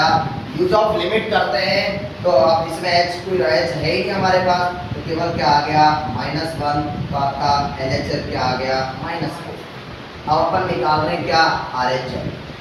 यूज ऑफ लिमिट करते हैं तो अब इसमें h कोई h है ही नहीं हमारे पास, तो केवल क्या आ गया, -1, तो आपका LHL क्या आ गया, -4। अब अपन निकाल रहे हैं क्या, RHL।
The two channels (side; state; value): both; identical; correlation 1.00